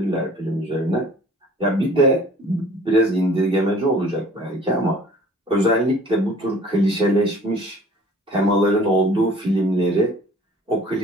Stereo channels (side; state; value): both; normal; correlation 0.50